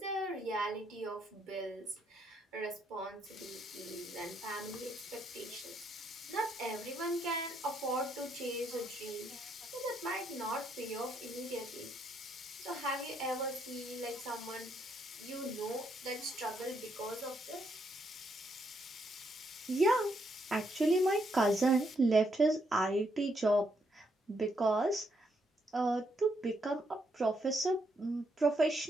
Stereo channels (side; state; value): both; normal; correlation 0.75